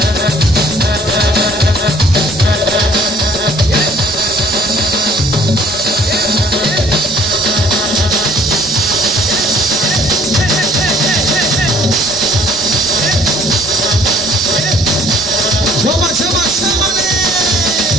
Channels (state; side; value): normal; both; correlation 0.57